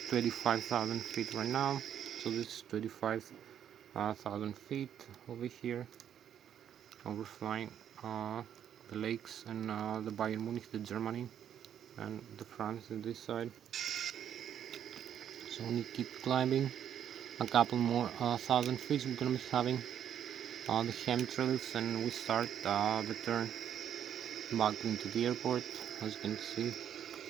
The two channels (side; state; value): left; quieter; 9.5 dB